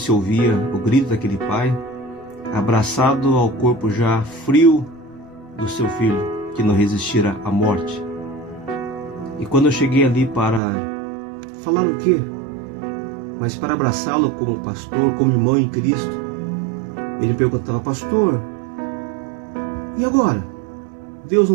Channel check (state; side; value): drops out; left; at 10.6 s